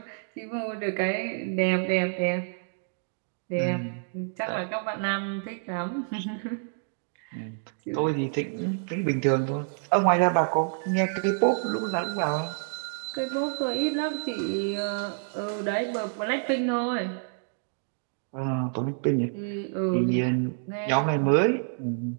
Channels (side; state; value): left; silent; digital silence